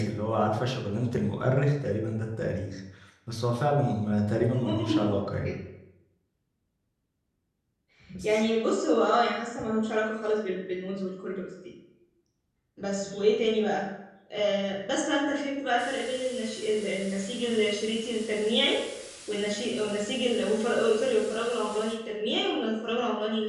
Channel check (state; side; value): identical; both; correlation 1.00